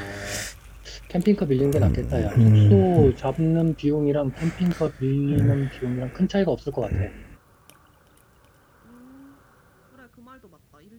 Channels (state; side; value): identical; both; correlation 1.00